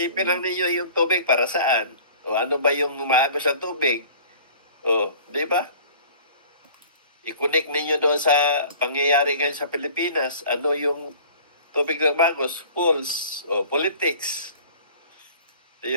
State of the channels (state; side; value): inverted; both; correlation -0.46